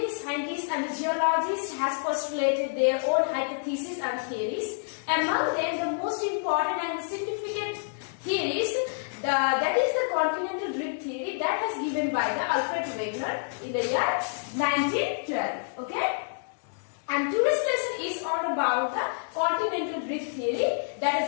scientists and geologists have postulated their own hypotheses and theories. Among them, the most important and significant theories, that is the Continental Drift theory that was given by the Alfred Wegener in the year 1912. Okay? And today's lesson is all about the Continental Drift theory that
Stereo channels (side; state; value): right; silent; digital silence